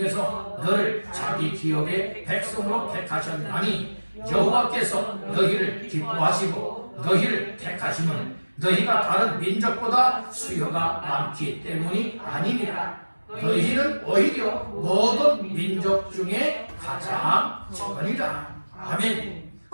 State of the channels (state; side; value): inverted; both; correlation -1.00